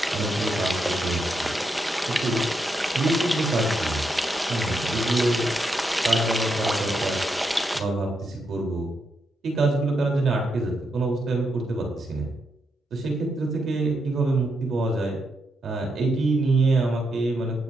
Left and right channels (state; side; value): normal; both; correlation 0.82